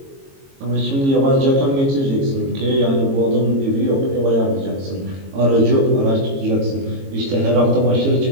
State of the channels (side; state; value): left; late; 22 ms